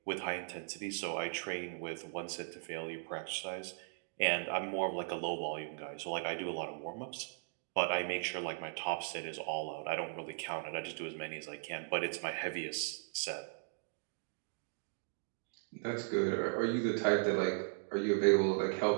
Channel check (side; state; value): left; silent; digital silence